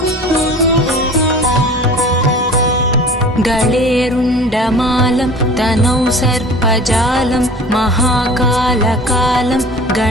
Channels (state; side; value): normal; both; correlation 0.42